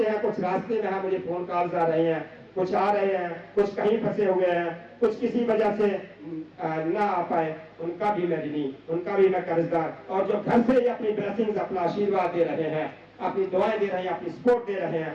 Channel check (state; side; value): identical; both; correlation 1.00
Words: हैं, कुछ रास्ते में है, मुझे फोन कॉल्स आ रहे हैं, कुछ आ रहे हैं, कुछ कहीं फंसे हुए हैं, कुछ किसी वजह से ना आ पाए, उनका भी मैं ऋणी, उनका भी मैं कर्जदार। और जो घर से ही अपनी ब्लेसिंग्स, अपना आशीर्वाद दे रहे हैं, अपनी दुआएं दे रहे हैं, अपनी सपोर्ट दे रहे